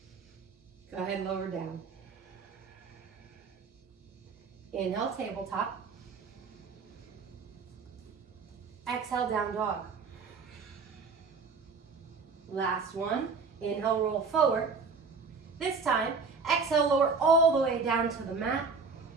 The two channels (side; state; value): left; quieter; 4.8 dB